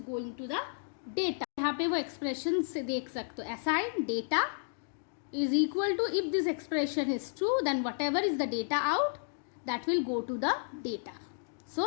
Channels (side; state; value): right; silent; digital silence